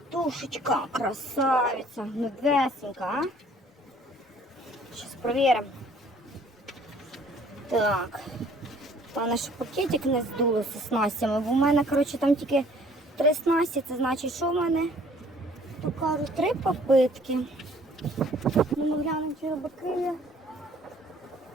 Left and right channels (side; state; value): both; normal; correlation 0.56